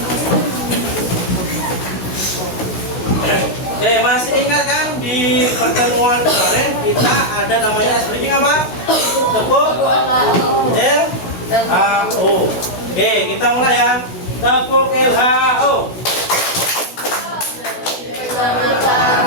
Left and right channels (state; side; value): late; right; 16 ms